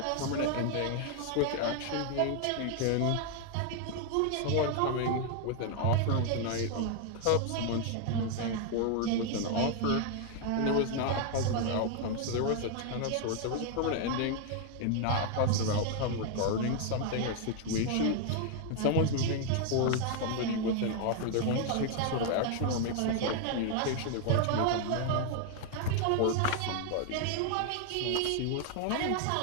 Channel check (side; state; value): both; different; correlation 0.01